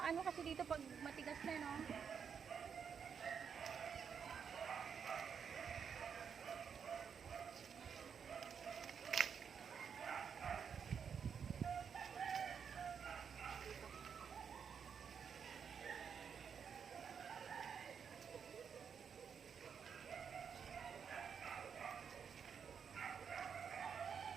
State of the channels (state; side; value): quieter; left; 7.0 dB